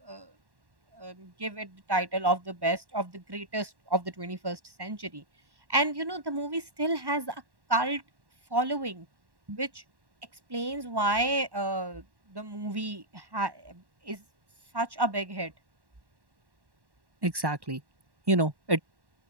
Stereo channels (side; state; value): left; late; 1.1 ms